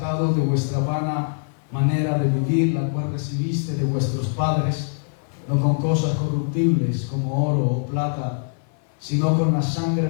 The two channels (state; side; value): silent; right; digital silence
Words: de vuestra vana manera de vivir, la cual recibiste de vuestros padres, no con cosas corruptibles como oro o plata, sino con la sangre